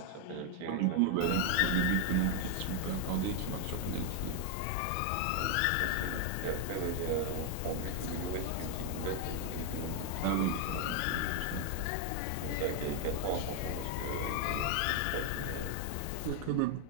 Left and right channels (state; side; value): different; both; correlation 0.01